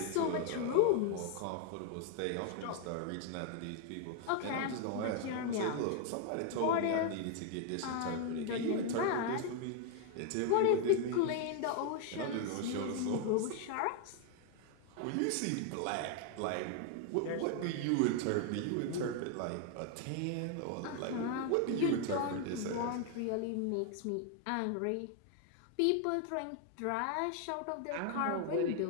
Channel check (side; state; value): both; different; correlation 0.00